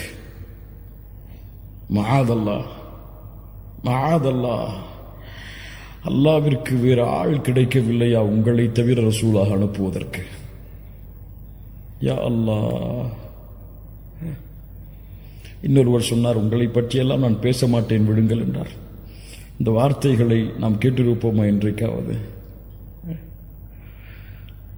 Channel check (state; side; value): identical; both; correlation 1.00